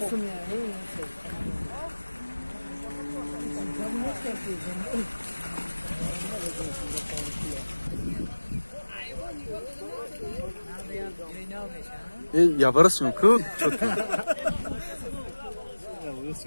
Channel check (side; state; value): both; inverted; correlation -1.00